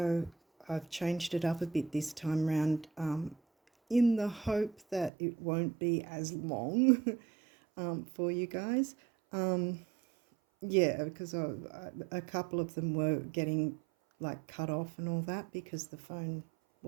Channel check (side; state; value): left; drops out; at 5.1 s